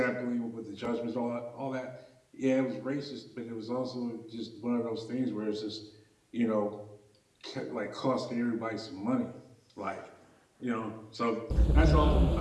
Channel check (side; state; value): both; identical; correlation 1.00